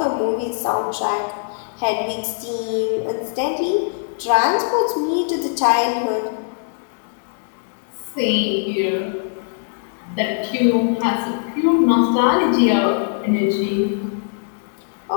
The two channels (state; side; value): silent; right; digital silence